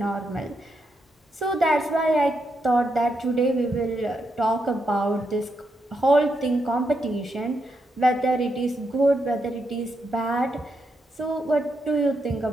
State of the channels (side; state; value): both; normal; correlation 0.82